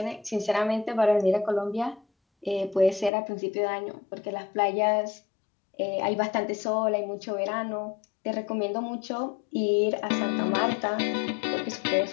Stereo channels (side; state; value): right; drops out; at 3.1 s